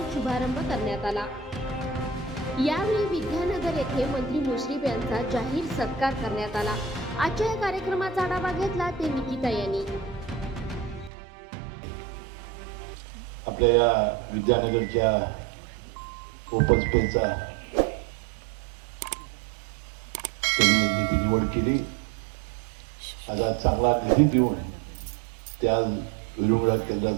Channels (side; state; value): left; drops out; at 11.1 s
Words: शुभारंभ करण्यात आला। यावेळी विद्यानगर येथे मंत्री मुश्रीफ यांचा जाहीर सत्कार करण्यात आला। आजच्या या कार्यक्रमाचा आढावा घेतला ते निकिता यांनी। आपल्या या विद्यानगरच्या ओपन स्पेसचा त्यांनी निधी निवड केली। आता चांगला निधी देऊन त्या विरुंगळा